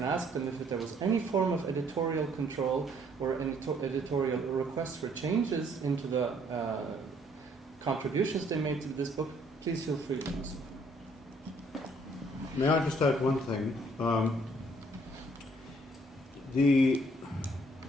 ask them if there was any form of editorial control or any editorial requests for changes into the contributions they made to this book, please feel free to do so. May I just add one thing?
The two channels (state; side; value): normal; both; correlation 0.64